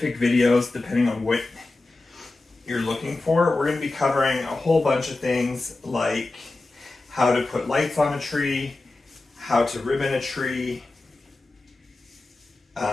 videos depending on what you're looking for. We're going to be covering a whole bunch of things like how to put lights on a tree, how to ribbon a tree,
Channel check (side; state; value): right; quieter; 3.1 dB